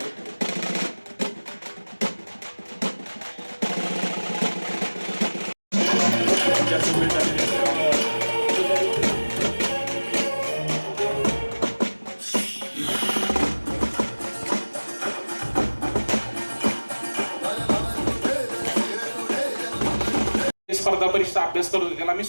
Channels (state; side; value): inverted; both; correlation -1.00